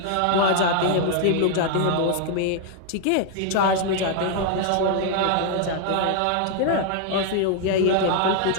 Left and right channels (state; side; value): different; both; correlation 0.00